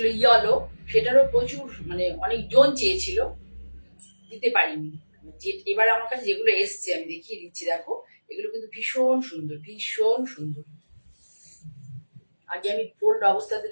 ইয়েলো, সেটারও প্রচুর মানে অনেক জন চেয়েছিল, দিতে পারিনি। এবার আমার কাছে যেগুলো এসছে আমি দেখিয়ে দিচ্ছি, দেখো এগুলো কিন্তু ভীষণ সুন্দর, ভীষণ সুন্দর। আগে আমি ফোল্ড অবস্থাতে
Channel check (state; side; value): inverted; both; correlation -1.00